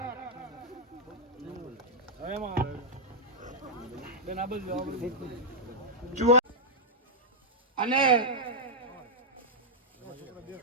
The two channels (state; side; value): normal; both; correlation -0.06